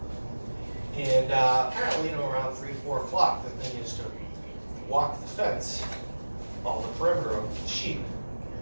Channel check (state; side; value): inverted; both; correlation -1.00